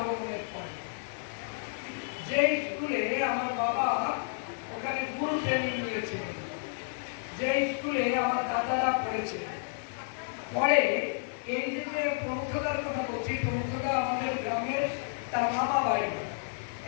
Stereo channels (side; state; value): right; silent; digital silence